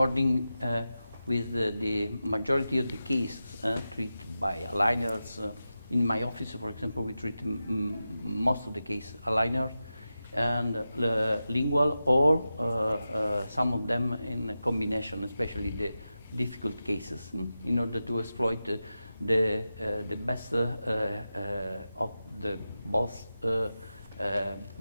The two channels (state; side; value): inverted; both; correlation -0.92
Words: with the majority of the cases treated by aligners, in my office, for example, we treat most of the cases aligner and lingual, or some of them in combination, especially the difficult cases, in order to exploit the best of the both